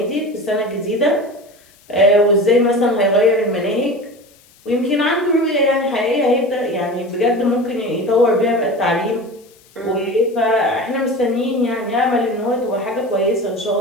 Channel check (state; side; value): noise; left; hiss, 29 dB below the sound